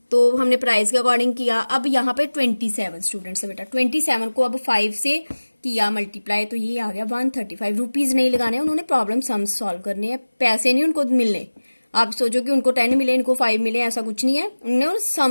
तो हमने प्राइस के अकॉर्डिंग किया। अब यहाँ पे 27 स्टूडेंट्स है बेटा, 27 को अब 5 से किया मल्टीप्लाई, तो ये आ गया ₹135 नहीं लगाने, उन्होंने प्रॉब्लम सम्स सॉल्व करने हैं, पैसे नहीं उनको मिलने। आप सोचो कि उनको 10 मिले इनको 5 मिले, ऐसा कुछ नहीं है, उन्होंने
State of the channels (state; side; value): inverted; both; correlation -1.00